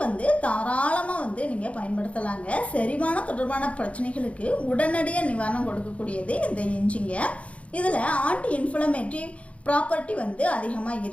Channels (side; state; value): right; late; 0.064 ms